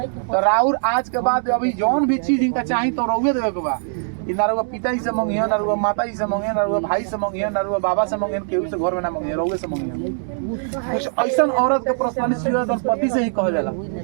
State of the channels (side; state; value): left; silent; digital silence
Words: तो राउर आज के बाद अभी जौन भी चीज इनका चाहिए तो रउए देवे के बा। ना रुआ पिता जी से मंगिए ना रुआ माता जी से मंगिए ना रुआ भाई से मंगिए ना रुआ बाबा से मंगिए केहू से घर में ना मंगिए रउए से मंगिए। कुछ ऐसा औरत के पर्सनलिटी और पति से ही कह जाला